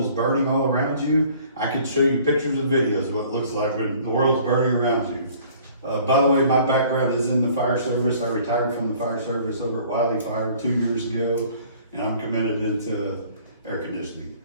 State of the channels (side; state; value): both; inverted; correlation -0.53